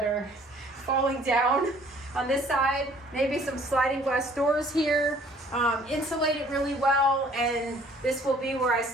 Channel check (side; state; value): both; normal; correlation 0.56